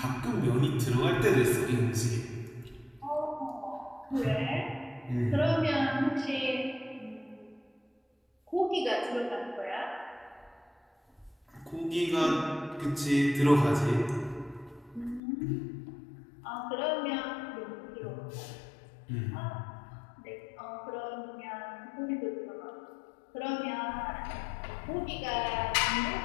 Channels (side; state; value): right; drops out; at 15.2 s